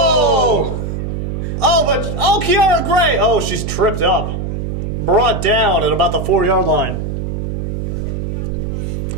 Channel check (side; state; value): right; noise; hum, 3 dB below the sound